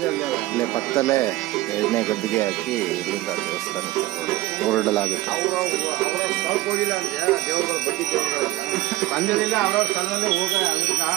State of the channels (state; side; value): quieter; left; 17.0 dB